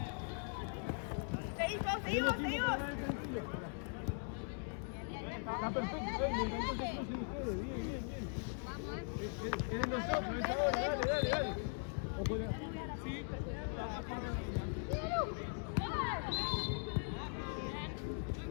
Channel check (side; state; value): right; silent; 51 dB below the other